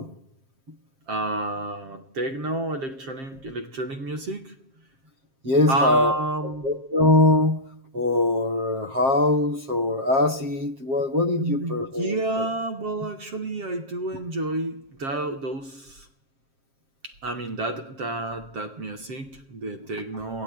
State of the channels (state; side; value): late; left; 7.5 ms